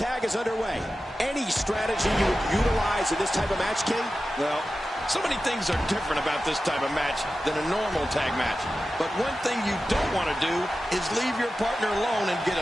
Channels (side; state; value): both; normal; correlation 0.93